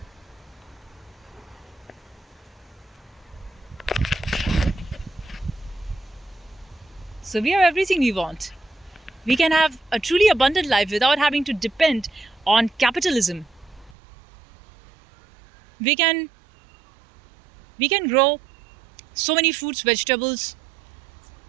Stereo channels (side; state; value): left; drops out; at 14.0 s